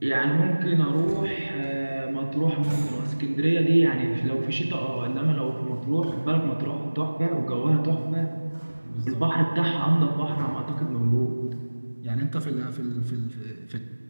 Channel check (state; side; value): inverted; both; correlation -1.00